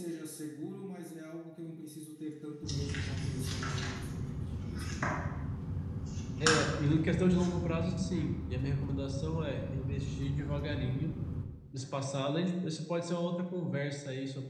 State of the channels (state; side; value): identical; both; correlation 1.00